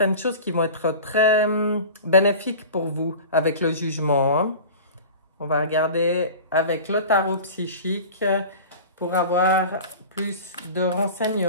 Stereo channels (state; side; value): inverted; both; correlation -0.37